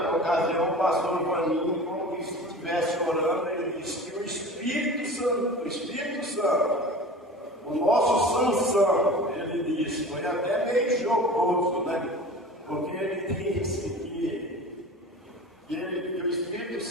ocasião, o pastor Vaninho, como se estivesse orando, ele disse que o Espírito Santo, o nosso Sansão, ele disse, foi até meio jocoso, né? Porque ele disse que o Espírito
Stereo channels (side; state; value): both; normal; correlation 0.37